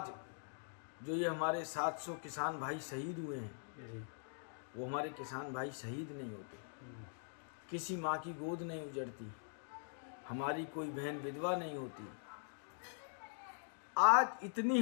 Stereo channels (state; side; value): silent; right; digital silence